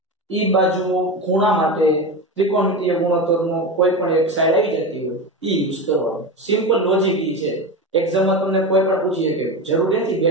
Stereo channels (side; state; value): both; normal; correlation 0.22